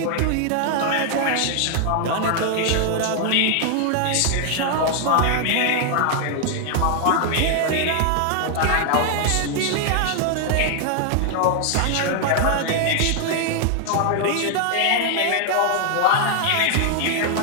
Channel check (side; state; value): both; different; correlation 0.00